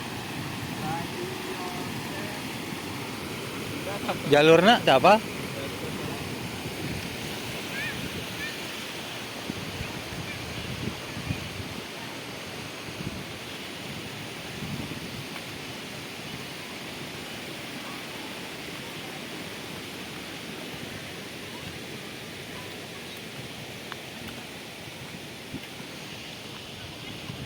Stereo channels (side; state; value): both; identical; correlation 1.00